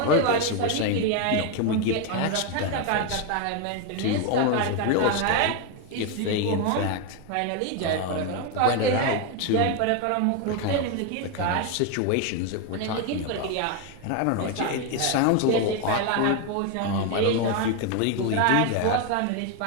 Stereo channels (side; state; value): both; different; correlation 0.01